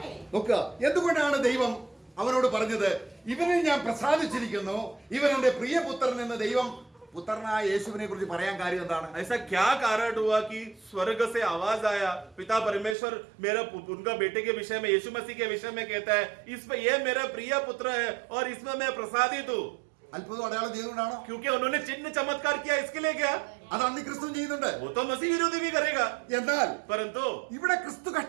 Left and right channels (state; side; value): drops out; left; at 13.0 s